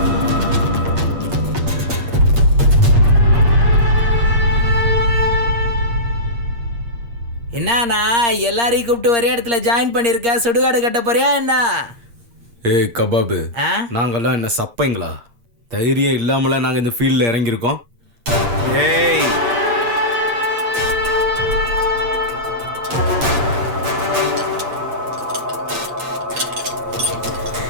என்னண்ணா எல்லாரையும் கூப்பிட்டு ஒரே இடத்துல ஜாயின் பண்ணிருக்க? சுடுகாடு கட்ட போறியா என்ன? ஏய் கபாபு, நாங்கெல்லாம் என்ன சப்பைங்களா? தைரியம் இல்லாமல நாங்க இந்த ஃபீல்ட்ல இறங்கியிருக்கோம். ஏய்,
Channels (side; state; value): left; late; 8.6 ms